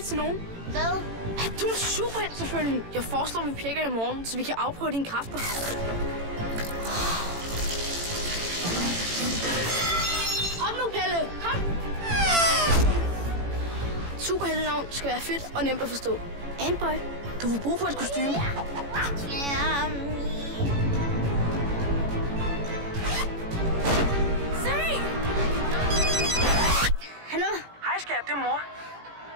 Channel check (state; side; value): late; left; 18 ms